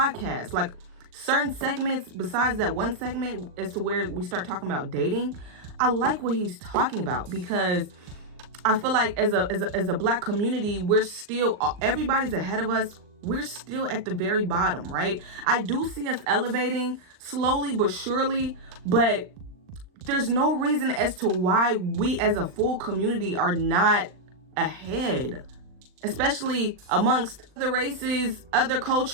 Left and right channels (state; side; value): late; left; 39 ms